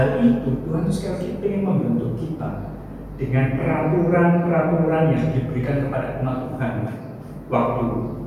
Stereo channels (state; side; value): identical; both; correlation 1.00